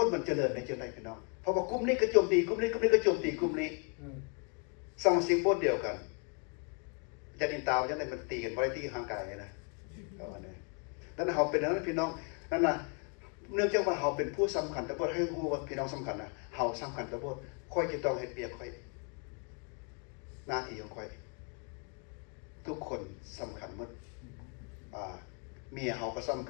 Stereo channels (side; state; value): right; quieter; 37.5 dB